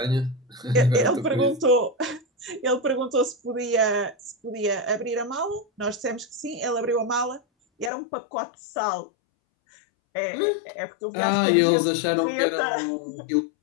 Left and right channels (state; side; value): drops out; right; at 7.9 s